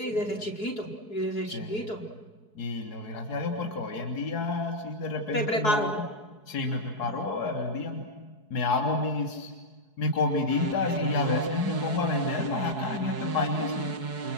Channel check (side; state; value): right; late; 4.7 ms